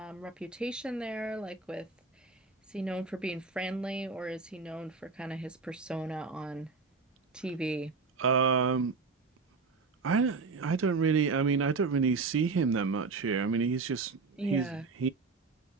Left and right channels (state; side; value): quieter; left; 4.5 dB